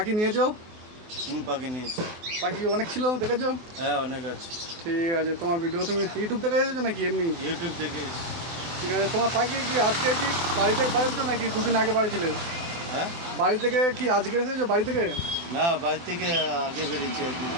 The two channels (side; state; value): left; late; 24 ms